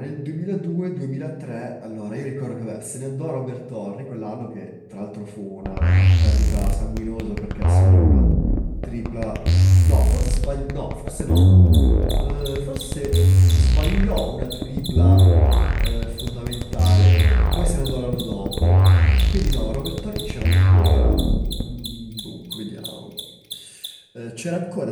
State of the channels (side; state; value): both; identical; correlation 1.00